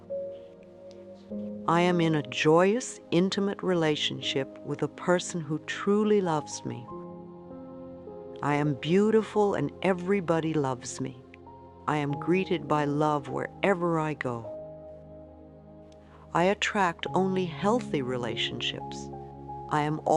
I am in a joyous, intimate relationship with a person who truly loves me. I am beautiful and everybody loves me. I am greeted by love wherever I go. I attract only healthy relationships. I am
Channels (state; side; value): identical; both; correlation 1.00